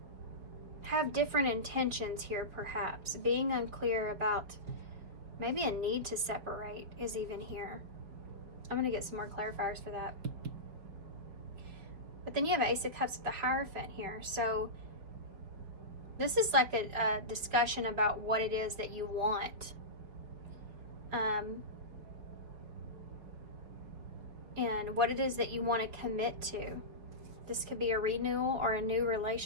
have different intentions here, perhaps. Being unclear about maybe a need to separate is even here. I'm going to get some more clarifiers for that. But then you have Ace of Cups with the Hierophant here. So this is like a discussion about what it is that you want. And what it is that you want to commit to. This could be a renewal or a new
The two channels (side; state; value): left; late; 5.1 ms